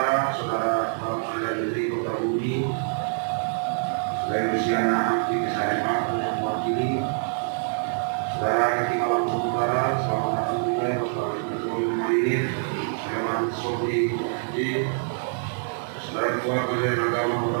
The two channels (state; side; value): silent; left; 61 dB below the other